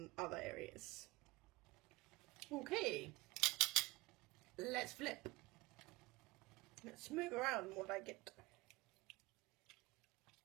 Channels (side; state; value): left; quieter; 22.2 dB